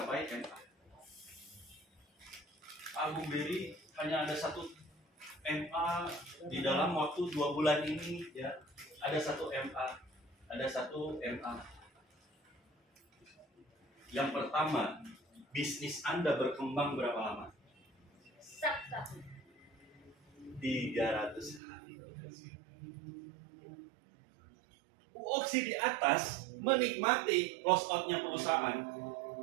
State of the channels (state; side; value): drops out; left; at 21.6 s